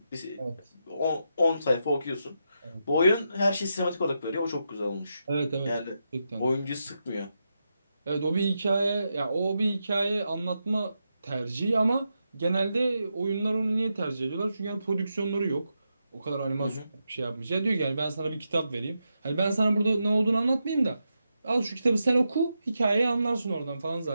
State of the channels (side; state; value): both; inverted; correlation -0.86